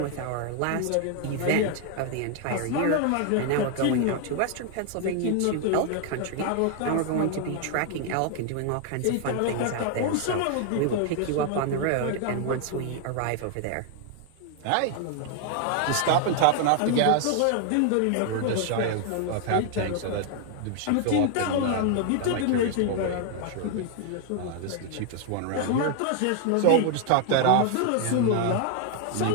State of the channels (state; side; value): different; both; correlation 0.00